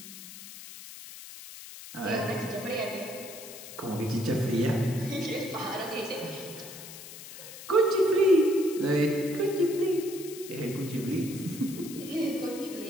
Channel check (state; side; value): noise; left; hiss, 14 dB below the sound